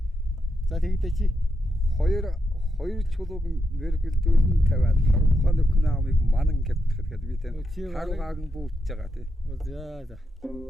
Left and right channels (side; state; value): both; normal; correlation 0.84